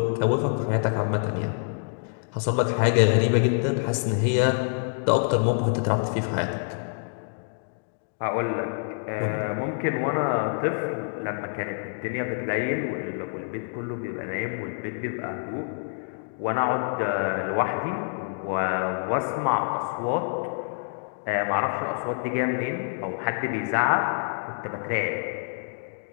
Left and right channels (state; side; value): silent; right; digital silence